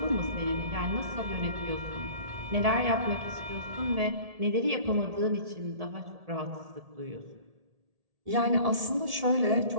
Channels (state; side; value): late; left; 1.7 ms